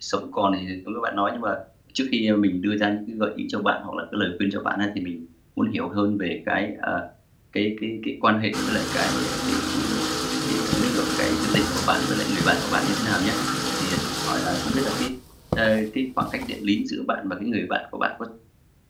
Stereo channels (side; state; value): both; identical; correlation 1.00